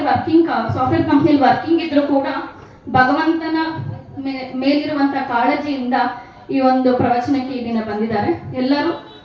ಕಂಪ್ನಿಯಲ್ಲಿ ವರ್ಕಿಂಗ್ ಇದ್ರು ಕೂಡ ಭಗವಂತನ ಮೇಲಿರುವಂತಹ ಕಾಳಜಿಯಿಂದ ಈ ಒಂದು ಪ್ರವಚನಕ್ಕೆ ಈ ದಿನ ಬಂದಿದ್ದಾರೆ. ಎಲ್ಲರೂ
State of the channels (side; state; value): both; identical; correlation 1.00